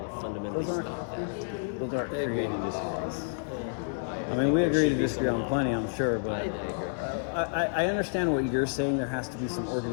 that fundamentally Those aren't- stop that. Those aren't creating laws. I mean, think we there agree to should be disagree some on law. plenty, I'm sure, but I agree. I understand what you're saying. There has to be some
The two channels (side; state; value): right; silent; digital silence